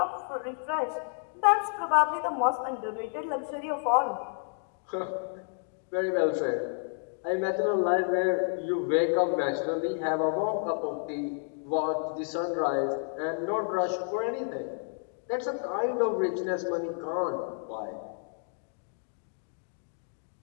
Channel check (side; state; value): right; silent; 55 dB below the other